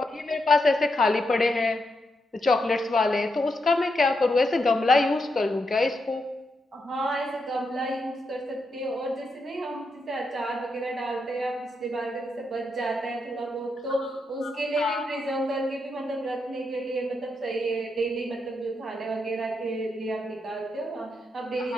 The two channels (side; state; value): both; normal; correlation 0.83